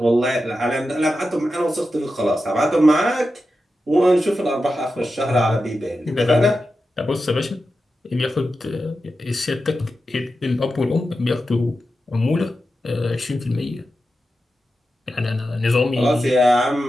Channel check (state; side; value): normal; both; correlation 0.91